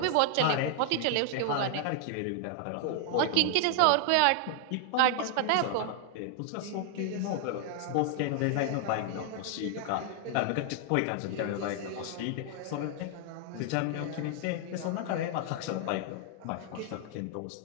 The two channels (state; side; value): different; both; correlation 0.00